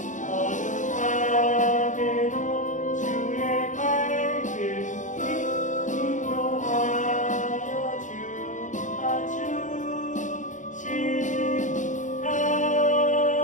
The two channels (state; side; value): late; right; 0.36 ms